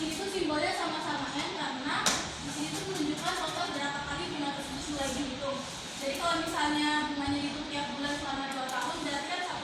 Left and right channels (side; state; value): both; identical; correlation 1.00